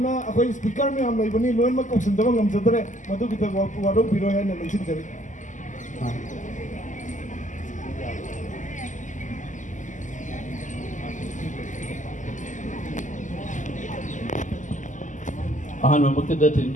akhoi speaker me am laibani loin ma kausin dawang am jadre madu kita wado biro hai na lingsin jare ahan mamakta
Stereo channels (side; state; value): right; late; 0.37 ms